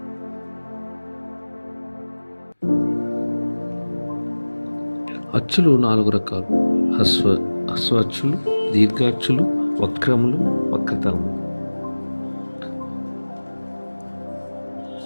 అచ్చులు 4 రకాలు: హస్వ అచ్చులు, దీర్ఘాచ్చులు, వక్రములు, వక్రతలములు.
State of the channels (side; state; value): both; inverted; correlation -1.00